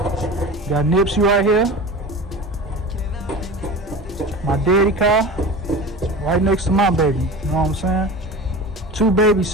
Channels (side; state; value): both; normal; correlation 0.33